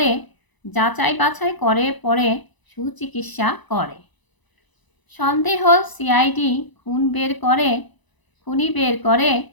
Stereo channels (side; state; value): right; late; 1.0 ms